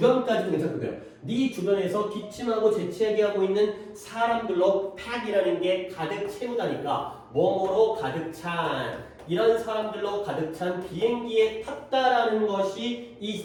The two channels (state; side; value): identical; both; correlation 1.00